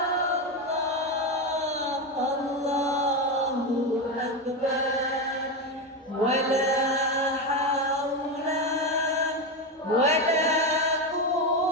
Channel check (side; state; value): both; normal; correlation 0.14